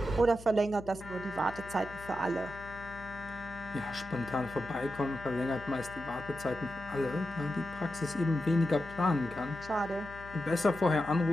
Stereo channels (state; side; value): noise; left; hum, 16 dB below the sound